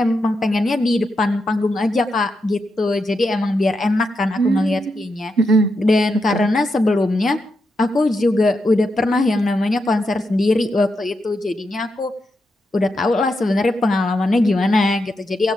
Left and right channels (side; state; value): both; normal; correlation 0.85